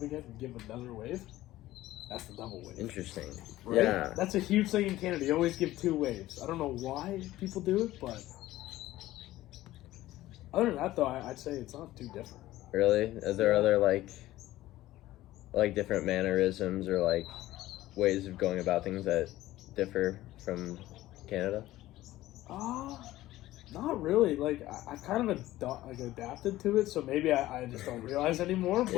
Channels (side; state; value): right; quieter; 15.9 dB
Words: again and give another wave? That's the double wave. Interesting. Right? Yeah. That's a huge thing in Canada. You always give 2 waves. I don't know why people do it, but other than that, though, I'd say it's not too different. Really? Is there other, like different mannerisms or, like, ways of going about things that differ from Canada? Not really. Like, I've kind of adapted to it, so maybe I just don't realize anymore. But